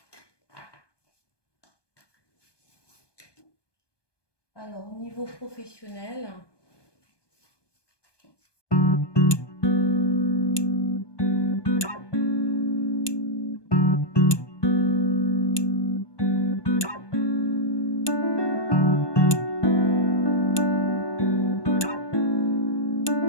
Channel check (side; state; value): right; late; 1.2 ms